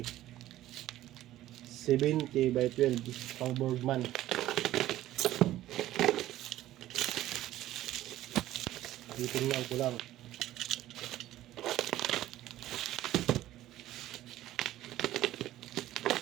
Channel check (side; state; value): left; quieter; 14.4 dB